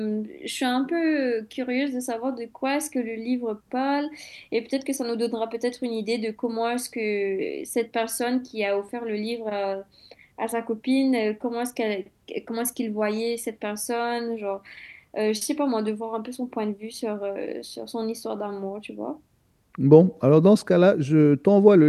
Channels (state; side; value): identical; both; correlation 1.00